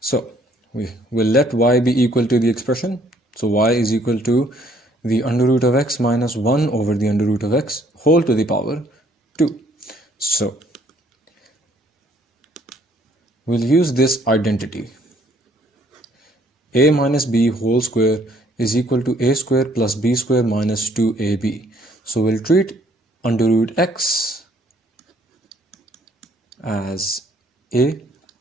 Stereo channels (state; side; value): normal; both; correlation 0.63